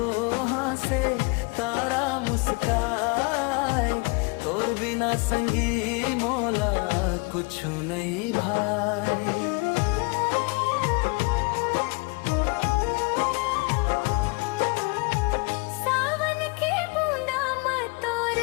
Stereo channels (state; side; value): quieter; right; 30.1 dB